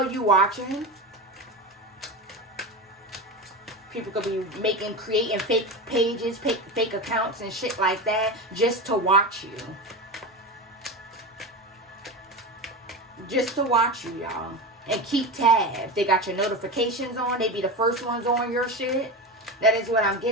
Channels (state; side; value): normal; both; correlation 0.22